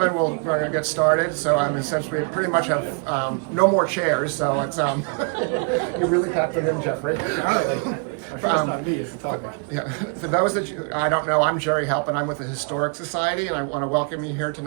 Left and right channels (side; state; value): left; quieter; 37.8 dB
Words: We're going to get started. So essentially pretty much have no more chairs. So it's you really tapped it in, Jeffrey. Yeah. So those that I don't know, I'm Jerry Halp, and I'm with the Historic Society, and I want to welcome you here